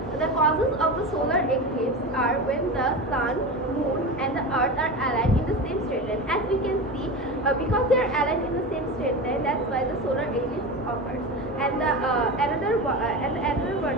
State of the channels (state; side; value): normal; both; correlation 0.25